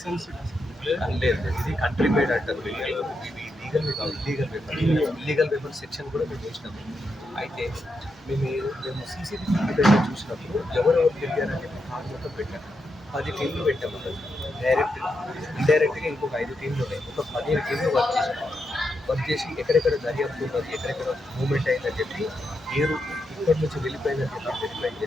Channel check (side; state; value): both; normal; correlation 0.84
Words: లేదు, ఇది కంట్రీ మేడ్ అంటారు. ఇవి లీగల్ కాదు, ఇల్లీగల్ వెపన్ సెక్షన్ కూడా మేము వేసినాము. అయితే మేము సీసీటీవీ ఫుటేజ్ చూసినప్పుడు ఎవరెవరు తెలియాలని చెప్పి కార్ మొత్తం పెట్టాము. 10 టీంలు పెట్టాము. డైరెక్ట్ ఇండైరెక్ట్గా ఇంకొక 5 టీంలు ఉన్నాయి. ఒక 15 టీంలు వర్క్ చేసి ఎక్కడెక్కడ దర్యాప్తు ఉన్నది, ఎక్కడెక్కడ మూవ్మెంట్ అయిందని చెప్పి మీరు ఇక్కడి నుంచి వెళ్ళిపోయిందని చెప్పి వెరిఫై